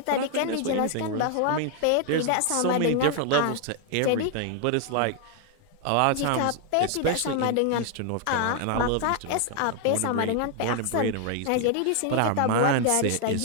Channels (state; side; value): different; both; correlation 0.00